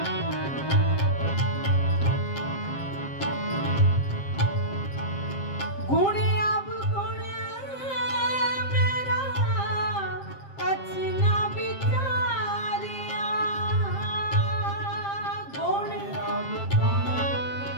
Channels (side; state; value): right; late; 7.5 ms